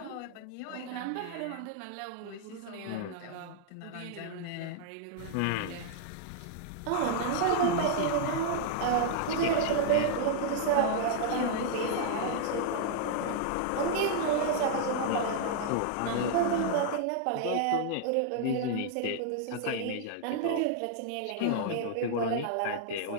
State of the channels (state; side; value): different; both; correlation -0.01